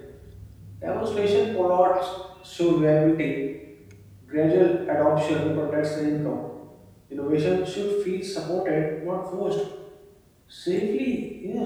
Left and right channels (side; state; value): both; identical; correlation 1.00